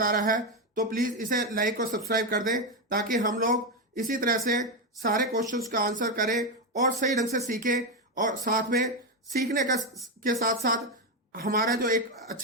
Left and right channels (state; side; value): normal; both; correlation 0.09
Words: आ रहा है, तो प्लीज इसे लाइक और सब्सक्राइब कर दें, ताकि हम लोग इसी तरह से सारे क्वेश्चंस का आंसर करें और सही ढंग से सीखें। और साथ में सीखने के साथ साथ हमारा जो एक